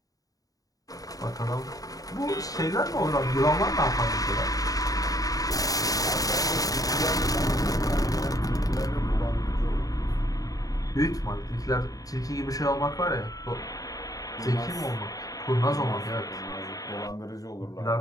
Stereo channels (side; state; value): right; late; 0.17 ms